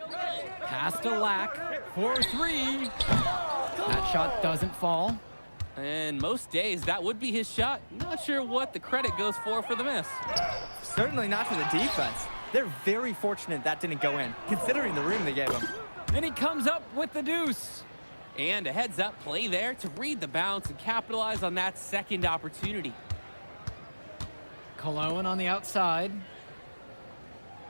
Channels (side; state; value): both; inverted; correlation -1.00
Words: Pass to Lack for three. That shot doesn't fall. And most days, that would be his shot. Not sure what the credit goes for the miss. Certainly not to the defense. They're very fortunate that didn't go in, considering the room they gave him. And he comes up with the deuce. And a heads-up play there to read the bounce and capitalize on that second opportunity. Cologne on the outside.